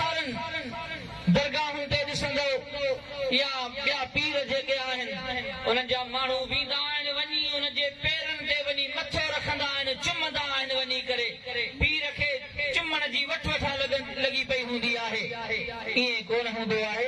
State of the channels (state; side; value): identical; both; correlation 1.00